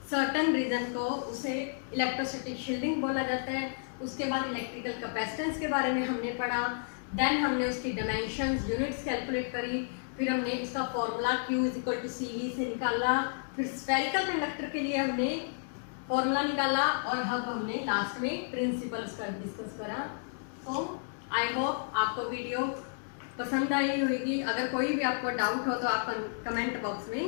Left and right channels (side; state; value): right; silent; digital silence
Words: सर्टन रीजन को, उसे इलेक्ट्रोस्टैटिक शील्डिंग बोला जाता है। उसके बाद इलेक्ट्रिकल कैपेसिटेंस के बारे में हमने पढ़ा, देन हमने उसकी डायमेंशंस, यूनिट्स कैलकुलेट करी, फिर हमने इसका फॉर्मूला Q = CV से निकाला, फिर स्फेरिकल कंडक्टर के लिए हमने फॉर्मूला निकाला और अब हमने लास्ट में प्रिंसिपल्स का डिस्कस करा। तो आई होप आपको वीडियो पसंद आई होगी। अगर कोई भी आपको डाउट हो तो आप कमेंट बॉक्स में